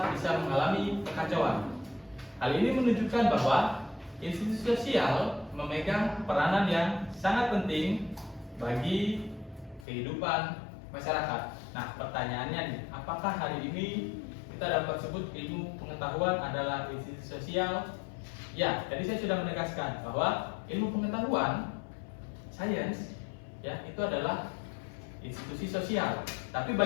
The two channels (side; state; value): right; drops out; at 9.9 s